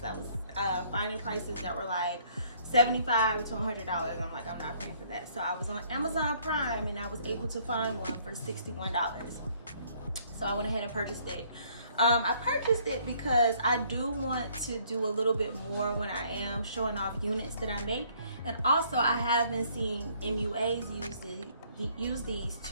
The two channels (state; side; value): inverted; both; correlation -0.62